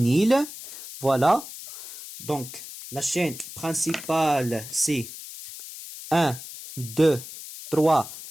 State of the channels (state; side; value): noise; left; hiss, 13 dB below the sound